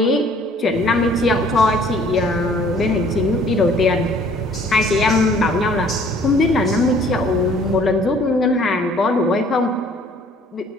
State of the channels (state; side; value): normal; both; correlation 0.56